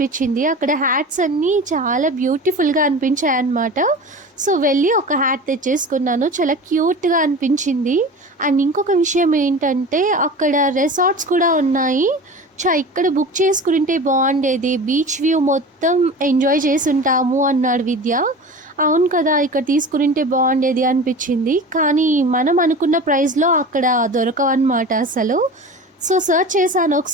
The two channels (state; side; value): normal; both; correlation 0.34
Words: అక్కడ హ్యాట్స్ అన్నీ చాలా బ్యూటిఫుల్గా అనిపించాయి అన్నమాట. సో వెళ్ళి ఒక హ్యాట్ తెచ్చేసుకున్నాను, చాలా క్యూట్గా అనిపించింది. అండ్ ఇంకొక విషయం ఏంటంటే అక్కడ రిసార్ట్స్ కూడా ఉన్నాయి. ఇక్కడ బుక్ చేసుకుంటే బాగుండేది, బీచ్ వ్యూ మొత్తం ఎంజాయ్ చేసి ఉంటాము అన్నాడు విద్య. అవును కదా, ఇక్కడ తీసుకుంటే బాగుండేది అనిపించింది. కానీ మనం అనుకున్న ప్రైస్లో అక్కడ దొరకవన్నమాట అసలు. సో సర్చ్ చేశాను